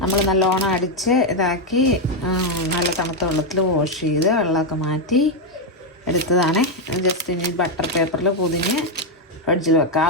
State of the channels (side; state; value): both; normal; correlation 0.03